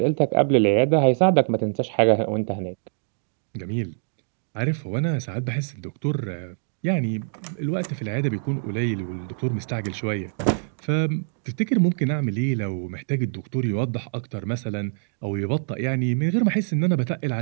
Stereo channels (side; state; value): left; silent; digital silence